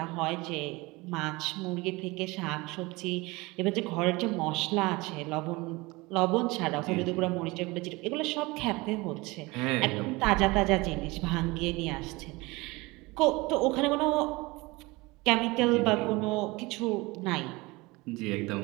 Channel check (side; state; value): left; quieter; 23.1 dB